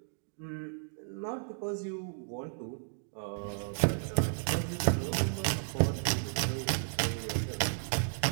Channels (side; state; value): left; silent; digital silence